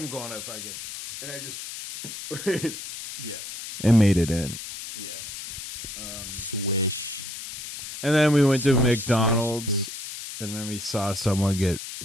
going to fucking, and I just Yeah. and made it in. Yeah. Switch. And then we went to McDonald's, and then we saw someone get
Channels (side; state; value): left; noise; hiss, 9 dB below the sound